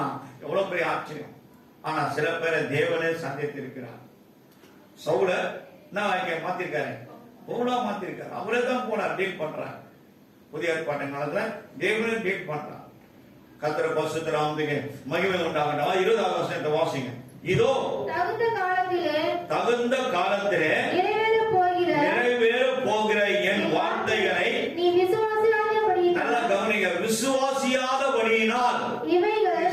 எவ்வளவு பெரிய ஆச்சரியம். ஆனா சில பேரை தேவனே சந்தித்திருக்கிறார். சவுல மாத்திருக்காரு, பவுலா மாத்திருக்காரு. அவரே தான் போனார், டீல் பண்றார். புதிய ஏற்பாட்டு காலத்துல தேவனே டீல் பண்றார். கர்த்தர் பரிசுத்த நாமத்துக்கு மகிமை உண்டாகட்டும். 20ஆம் வசனத்தை வாசிங்க. இதோ தகுந்த காலத்திலே நிறைவேற போகிற என் வார்த்தைகளை நல்லா கவனிங்க. விசுவாசியாதபடியினால்,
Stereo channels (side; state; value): both; identical; correlation 1.00